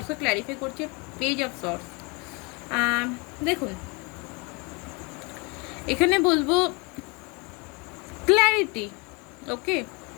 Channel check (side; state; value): right; quieter; 29.6 dB